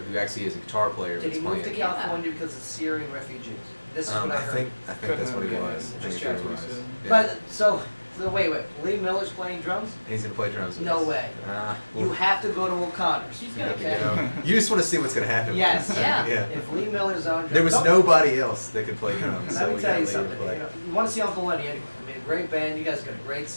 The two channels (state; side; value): inverted; both; correlation -1.00